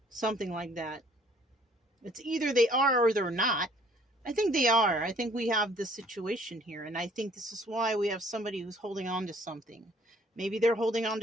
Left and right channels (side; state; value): both; normal; correlation 0.59